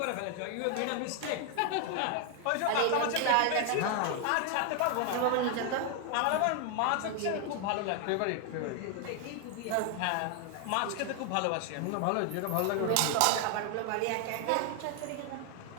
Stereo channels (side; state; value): both; different; correlation 0.00